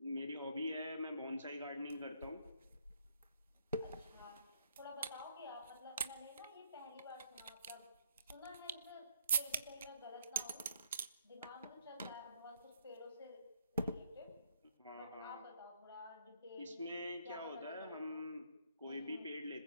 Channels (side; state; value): both; inverted; correlation -0.69